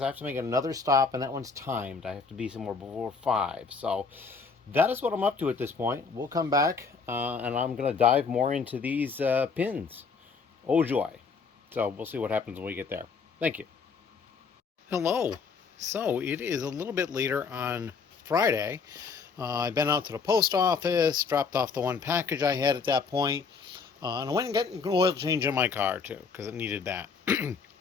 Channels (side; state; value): right; quieter; 5.2 dB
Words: I have to make another stop, and that one's timed. I have to be somewhere before 5. So that is what I'm up to at this point. We'll come back, and I'm going to dive more into these pins. Oh joy. So we'll see what happens when we get there. Thank you. Hello. So it is a little bit later on Friday. I've been out to the post office, dropped off the one package I had at that point, and I went and got an oil change in my car too, because it needed that.